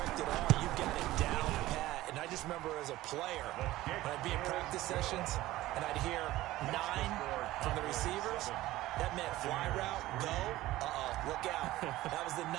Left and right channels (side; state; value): left; quieter; 16.6 dB